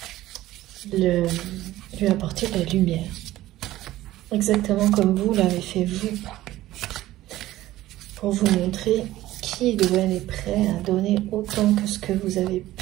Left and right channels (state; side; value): quieter; left; 15.6 dB